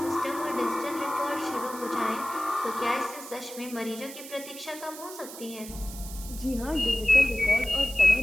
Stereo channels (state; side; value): noise; right; hiss, 13 dB below the sound